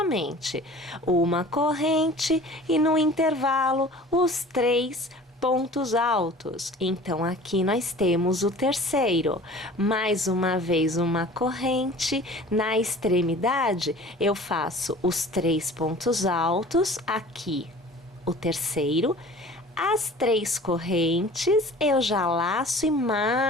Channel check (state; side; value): normal; both; correlation 0.44